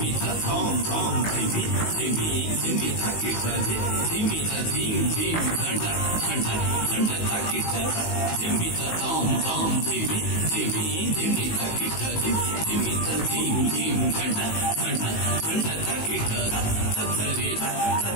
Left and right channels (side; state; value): right; late; 19 ms